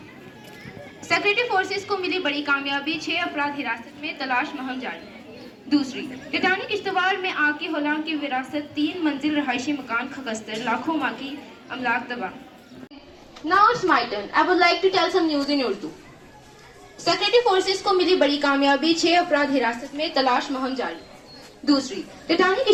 Secretary forces को मिली बड़ी कामयाबी, 6 अपराध हिरासत में, तलाश मुहिम जारी। दूसरी, टाइटैनिक किश्तवाड़ में आग की होलांग की विरासत, 3 मंजिल रहायशी मकान खगस्तर, लाखों माँ की अमलाक तबाह। Now it's my turn. I would like to tell some news in Urdu. Secretary forces को मिली बड़ी कामयाबी, 6 अपराध हिरासत में, तलाश मुहिम जारी। दूसरी, टाइटैनिक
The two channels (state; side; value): identical; both; correlation 1.00